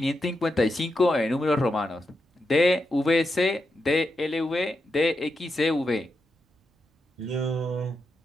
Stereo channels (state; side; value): normal; both; correlation 0.86